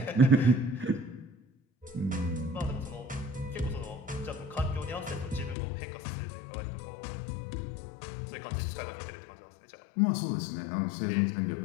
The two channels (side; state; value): right; drops out; at 5.6 s